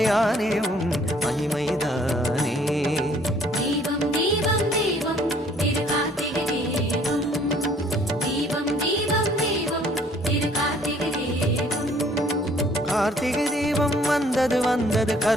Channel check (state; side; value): normal; both; correlation 0.59